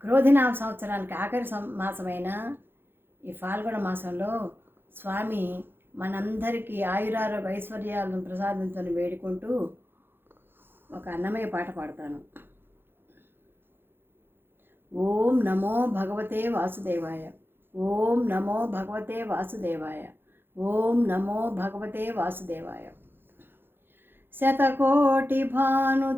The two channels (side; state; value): left; late; 0.10 ms